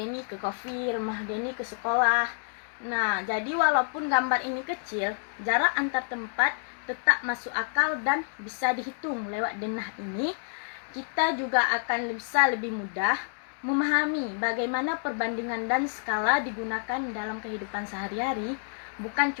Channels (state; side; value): silent; right; digital silence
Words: ke kopi, rumah Deni ke sekolah. Nah, jadi walaupun gambar ini kecil, jarak antar tempat tetap masuk akal dan bisa dihitung lewat denah ini. Kita juga akan bisa lebih mudah memahami bagaimana perbandingan dan skala digunakan dalam kehidupan sehari-hari, bukan